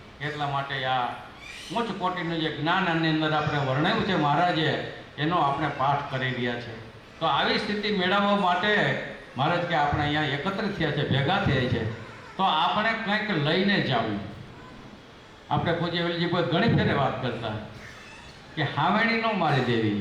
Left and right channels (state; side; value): identical; both; correlation 1.00